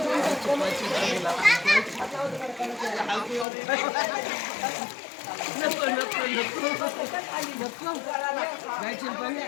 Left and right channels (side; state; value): right; drops out; at 3.5 s